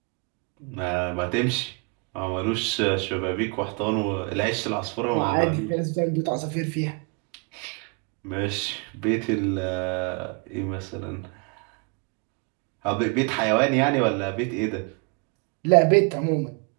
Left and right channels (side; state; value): left; quieter; 34.6 dB